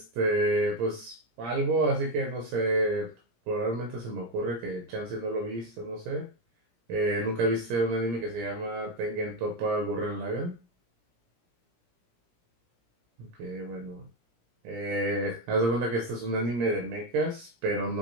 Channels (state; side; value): late; left; 17 ms